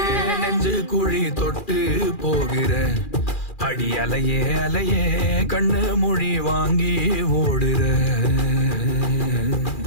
நெஞ்சு குழி தொட்டு போகிற அடி அலையே அலையே கண்ணு மொழி வாங்கி ஓடுற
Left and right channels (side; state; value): right; late; 2.4 ms